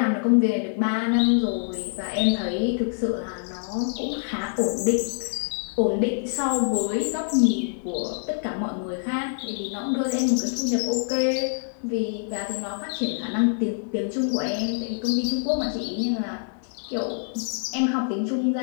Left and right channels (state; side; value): silent; right; digital silence